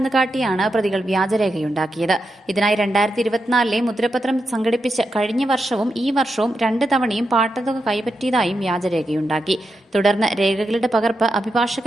കാട്ടിയാണ് പ്രതികൾ വ്യാജരേഖയുണ്ടാക്കിയത്. ഇതിനായി 2024 മുദ്രപത്രം സംഘടിപ്പിച്ച് കഴിഞ്ഞ വർഷവും ഈ വർഷവും 2 തവണയും പാട്ടത്തുക കൈപ്പറ്റിയതായും വ്യാജരേഖയുണ്ടാക്കി. തുടർന്ന് രേഖകളുടെ പകർപ്പ്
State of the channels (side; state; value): both; normal; correlation 0.86